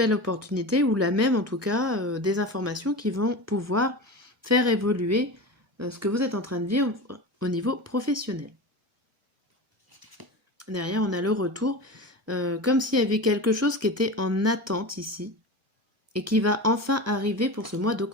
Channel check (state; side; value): normal; both; correlation 0.27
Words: opportunité, ou la même en tout cas, des informations qui vont pouvoir faire évoluer ce que vous êtes en train de vivre au niveau professionnel. Derrière, on a le retour, comme s'il y avait quelque chose qui était en attente ici, et qui va enfin arriver pour ce mois